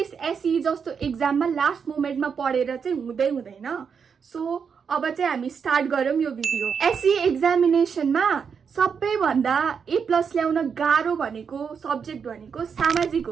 एसई जस्तो एक्जाममा लास्ट मोमेन्टमा पढेर चाहिँ हुँदैन। सो अब चाहिँ हामी स्टार्ट गरौँ यो भिडियो। एसई एक्जामिनेसनमा सबैभन्दा A+ ल्याउन गाह्रो भनेको सब्जेक्ट भनेको सामाजिक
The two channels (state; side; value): quieter; left; 6.4 dB